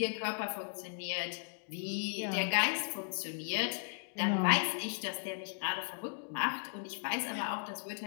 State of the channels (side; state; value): right; silent; digital silence